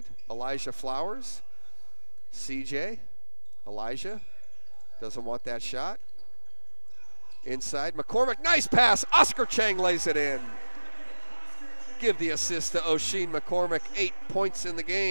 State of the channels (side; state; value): both; inverted; correlation -1.00